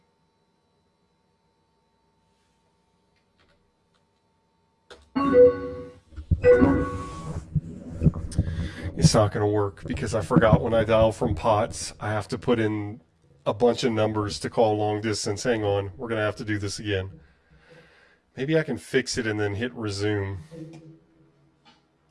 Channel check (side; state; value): both; identical; correlation 1.00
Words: It's not going to work because I forgot when I dial from POTS, I have to put in a bunch of numbers to call long distance. Hang on, we're going to have to do this again. Maybe I can fix it and then hit resume.